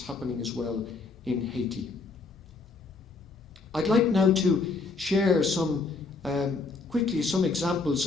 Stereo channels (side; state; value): right; quieter; 4.0 dB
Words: happening as well in Haiti. I'd like now to share quickly some examples